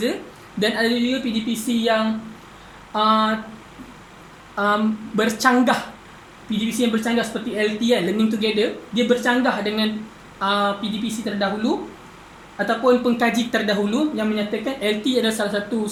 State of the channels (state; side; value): identical; both; correlation 1.00